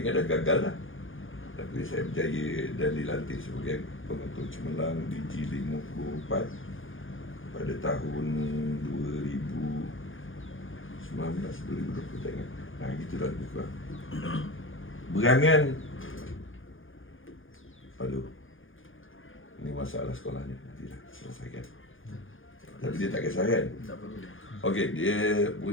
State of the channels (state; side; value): late; right; 0.58 ms